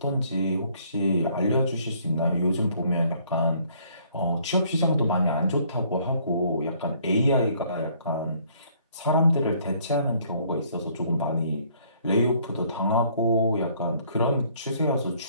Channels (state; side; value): inverted; both; correlation -0.62